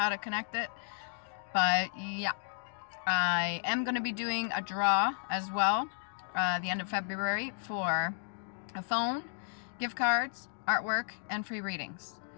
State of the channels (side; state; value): right; silent; digital silence